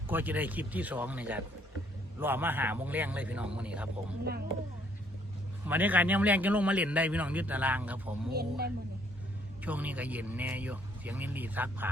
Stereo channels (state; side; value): normal; both; correlation 0.65